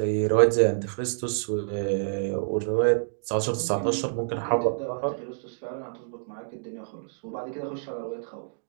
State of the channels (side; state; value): left; silent; digital silence